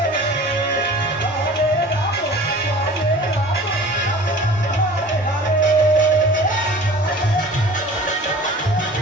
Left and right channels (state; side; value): normal; both; correlation 0.43